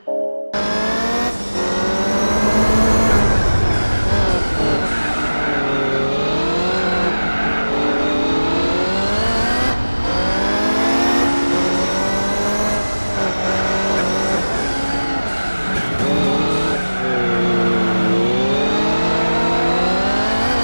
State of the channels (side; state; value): both; inverted; correlation -1.00